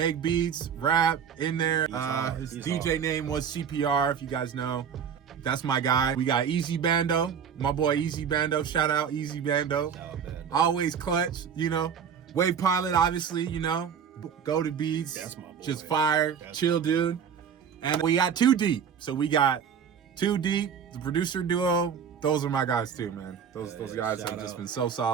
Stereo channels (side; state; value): left; quieter; 7.4 dB